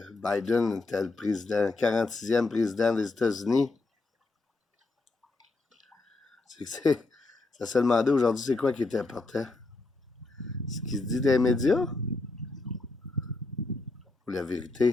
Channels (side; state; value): right; quieter; 3.4 dB